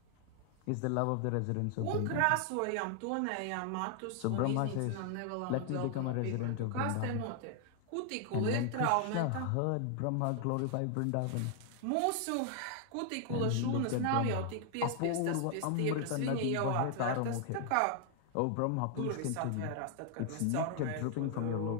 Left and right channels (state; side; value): different; both; correlation 0.00